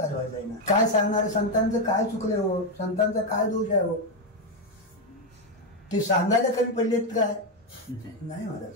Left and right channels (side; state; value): both; normal; correlation 0.06